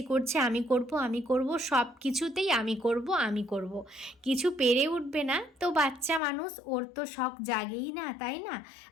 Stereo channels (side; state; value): right; drops out; at 6.2 s